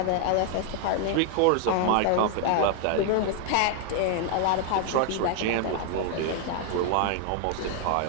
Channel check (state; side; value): different; both; correlation 0.00